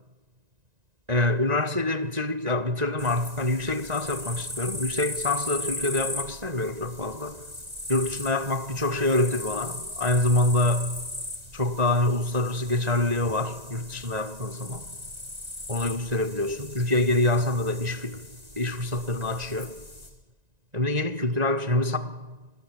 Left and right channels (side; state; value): left; late; 1.9 ms